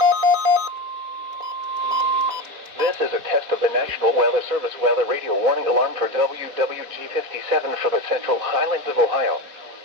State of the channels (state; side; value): late; left; 4.1 ms